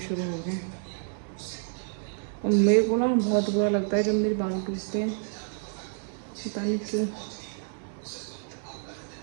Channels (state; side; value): silent; left; 59 dB below the other